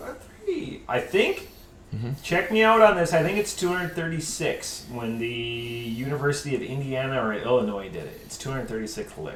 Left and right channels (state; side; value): identical; both; correlation 1.00